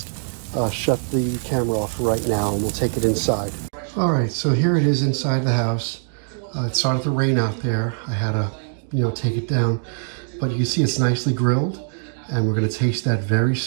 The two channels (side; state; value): left; silent; digital silence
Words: shut the camera off right now, and we'll take it inside. All right, so here it is inside the house. It started to rain out there. I had to, take it down, but you can see it's nicely grilled, and we're gonna taste that very